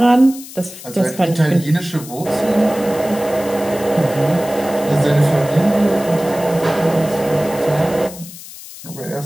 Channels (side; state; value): left; noise; hiss, 15 dB below the sound